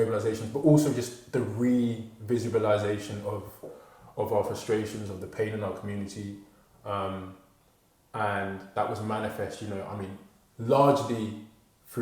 but also just the re-visibilization of our frustrations, of the pain in our community, and that was manifest, largely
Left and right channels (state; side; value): identical; both; correlation 1.00